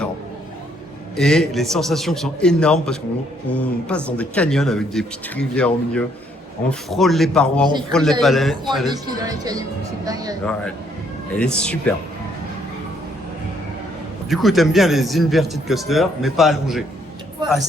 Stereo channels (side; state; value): both; normal; correlation 0.68